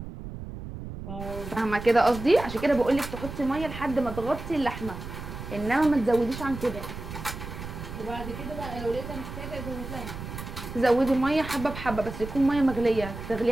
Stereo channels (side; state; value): right; noise; rumble, 9 dB below the sound